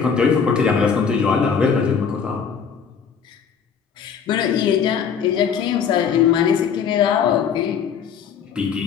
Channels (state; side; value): quieter; right; 6.9 dB